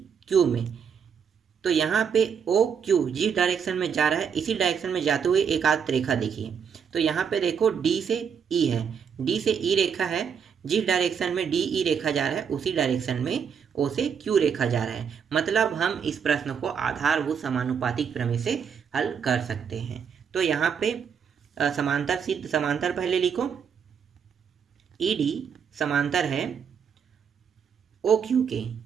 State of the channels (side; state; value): left; quieter; 7.1 dB